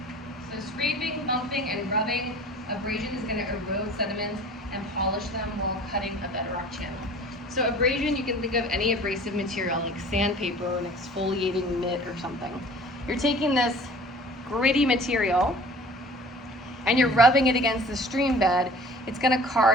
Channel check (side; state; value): both; normal; correlation 0.46